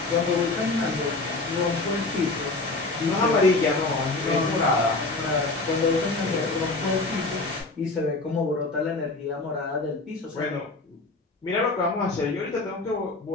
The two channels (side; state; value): right; quieter; 3.3 dB